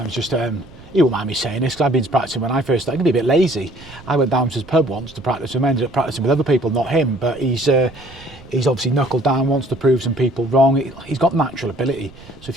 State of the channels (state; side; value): noise; right; rumble, 21 dB below the sound